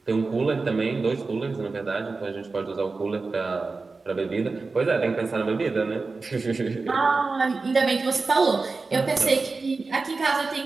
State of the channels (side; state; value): left; quieter; 4.0 dB